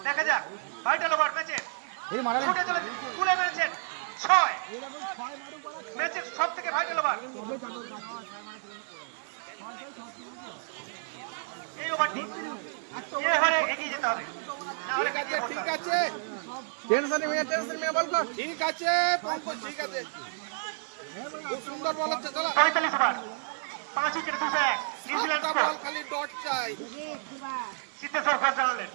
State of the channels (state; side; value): silent; left; digital silence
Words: দেখা যাক ভাইটাল ওভার ম্যাচে ছুটে চলেছে, তুলে মেরেছেন 6, ম্যাচের সব থেকে ভাইটাল ওভার। এই ওভারটি এই ওভারে এগিয়ে যেতে হবে, না হলে পিছিয়ে পড়তে হবে। টেনশন নিয়ে বল কর ঠিক আছে পঙ্কজ ঠিক আছে খুব সুন্দর বল হচ্ছে চলো 45 ওভার 5 উইকেটে 201 নিউজিল্যান্ড স্কোর। খালি ডট চাই সিদ্ধেশ্বর ঘোষ জানালেন।